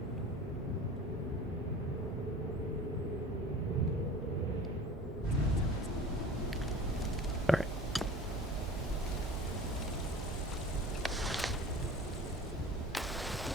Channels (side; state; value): both; normal; correlation 0.40